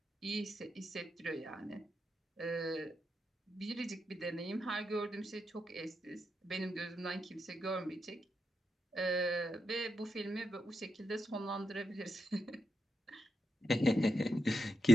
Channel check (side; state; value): both; normal; correlation 0.85